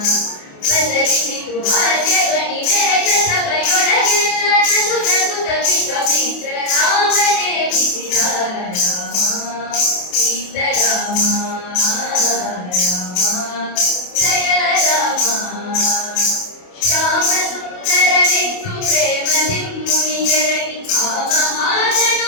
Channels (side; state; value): right; late; 28 ms